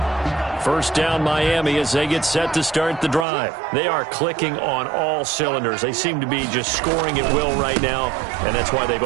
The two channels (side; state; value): left; drops out; at 3.2 s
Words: First down Miami as they get set to start the drive. They are clicking on all cylinders. They seem to be just scoring at will right now, and that's why they've